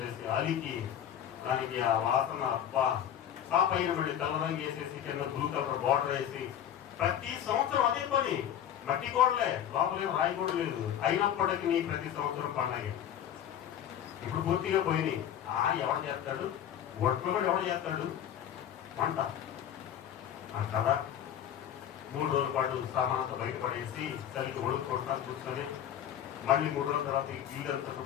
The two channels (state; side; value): quieter; right; 10.0 dB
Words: అలికి దానికి ఆ వాసన అబ్బా, ఆ పైన మళ్ళీ తెల్లరంగు వేసేసి కింద బ్లూ కలర్ బార్డర్ వేసి ప్రతి సంవత్సరం అదే పని. మట్టి గోడలే, లోపలేం రాయి కూడా లేదు. అయినప్పటికీ ప్రతి సంవత్సరం పండగ. ఇప్పుడు పూర్తిగా పోయినాయి. ఎవరు చేస్తాడు? ఒట్లు కూడా ఎవరు చేస్తాడు? వంట కదా. 3 రోజుల పాటు సామానంతో బయటపడేసి చలికి ఒడుకుంటా కూర్చొని మళ్ళీ 3 రోజుల తర్వాత ఇల్లంతా